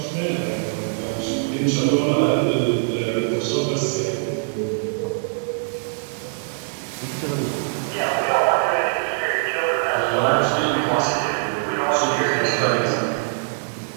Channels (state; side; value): silent; left; digital silence